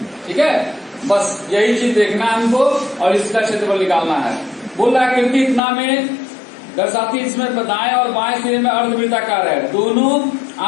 ठीक है, बस यही चीज देखना है हमको, और इसका क्षेत्रफल निकालना है। बोल रहा है आकृति इतना में दर्शाती, इसमें दाएं और बाएं सिरे में अर्धवृत्ताकार है। दोनों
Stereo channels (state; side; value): drops out; right; at 5.6 s